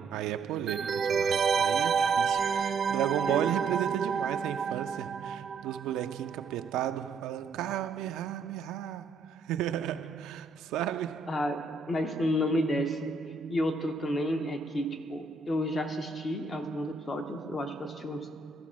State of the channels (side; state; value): left; quieter; 4.3 dB